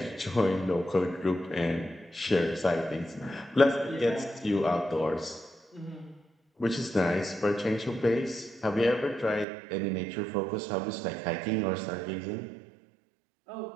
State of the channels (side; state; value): left; drops out; at 9.5 s